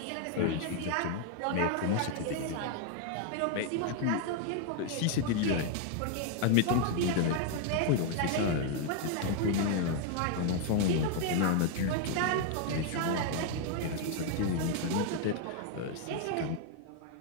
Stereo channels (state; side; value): different; both; correlation 0.00